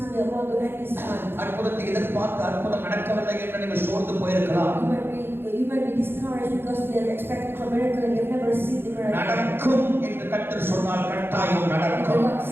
அற்புதத்தை எதிர்பார்த்து அற்புதம் நடக்கவில்லை என்று நீங்கள் சோர்ந்து போயிருக்கலாம். நடக்கும் என்று கர்த்தர் சொன்னால் கட்டாயம் நடக்கும்.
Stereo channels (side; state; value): left; late; 0.10 ms